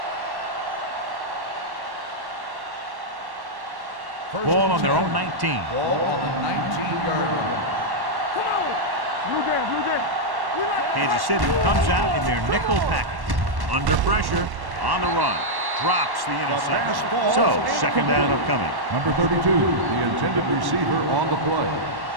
Ball on their own 19. Ball on the 19-yard line. Come on. Blue Jay, Blue Jay. We like Kansas City comes out in their nickel package. Under pressure, on the run. Drops the interception. So, second down upcoming. Number 32, the intended receiver on the play.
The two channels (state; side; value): late; left; 1.1 ms